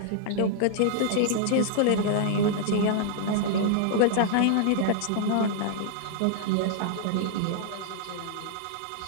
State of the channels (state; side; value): different; both; correlation -0.01